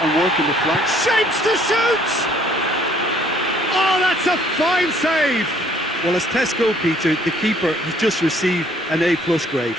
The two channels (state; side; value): normal; both; correlation 0.61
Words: the flanks. Shapes to shoot! Oh, that's a fine save! Well, as test goalkeeper, the keeper has just received an A+ grade.